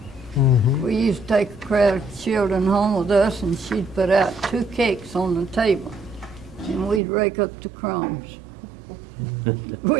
We used to take a crowd of children home with us and she'd put out 2 cakes on the table and we'd rake up the crumbs.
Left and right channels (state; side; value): drops out; left; at 7.0 s